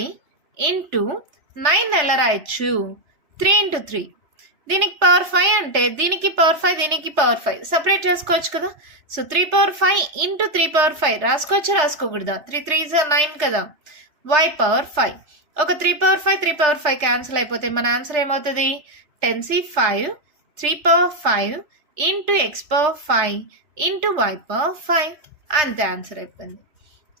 ఇంటూ 9 ఎలా రాయొచ్చు? 3 × 3. దీనికి పవర్ 5 అంటే దీనికి పవర్ 5, దీనికి పవర్ 5 సపరేట్ చేసుకోవచ్చు కదా. So 3/5 into 3/5 రాసుకోకూడదా? 3 3s 9 కదా. y power 5. ఒక 3/5 3/5 క్యాన్సిల్ అయిపోతే మన ఆన్సర్ ఏమవుతుంది? 10c 5 3/5 into x power 5 into y power 5. అంతే ఆన్సర్ అయిపోయింది.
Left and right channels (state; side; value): late; left; 3.3 ms